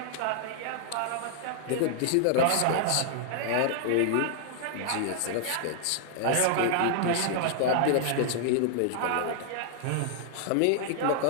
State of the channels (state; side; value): different; both; correlation 0.00